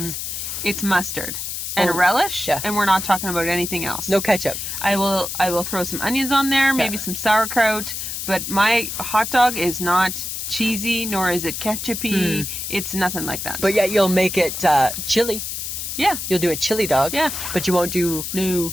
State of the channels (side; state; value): left; noise; hiss, 5 dB below the sound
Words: it's mustard and a relish, and we're not talking about anything else. No ketchup. I will throw some onions on there, maybe some sauerkraut, but my hot dog is not cheesy, nor is it ketchupy. It's nothing like that. But yet you'll make it chili. Yeah. You'll do a chili dog. Yeah. But you won't do... No.